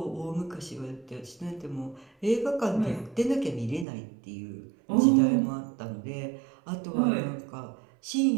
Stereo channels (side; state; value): left; drops out; at 3.9 s